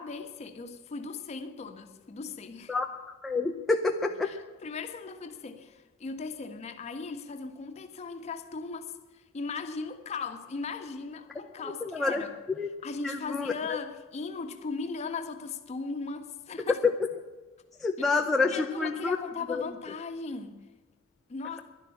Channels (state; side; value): quieter; right; 3.6 dB